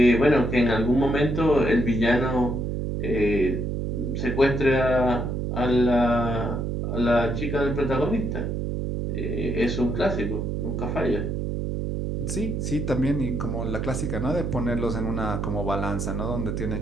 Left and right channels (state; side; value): noise; right; hum, 2 dB below the sound